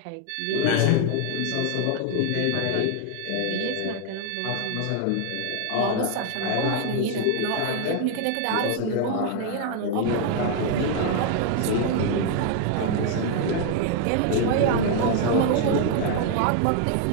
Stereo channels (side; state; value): both; different; correlation 0.00